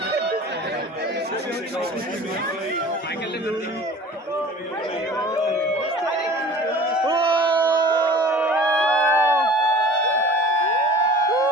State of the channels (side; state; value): both; normal; correlation 0.43